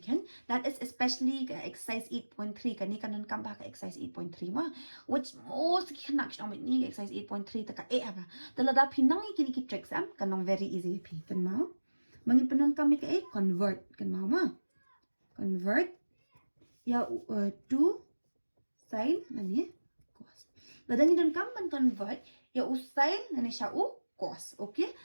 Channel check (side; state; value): both; inverted; correlation -1.00